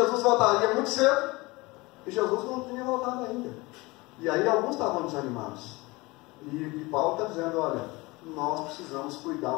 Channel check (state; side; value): quieter; right; 23.2 dB